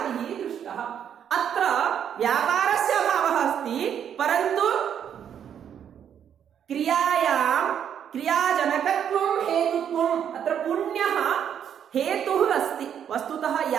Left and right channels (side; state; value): left; quieter; 8.8 dB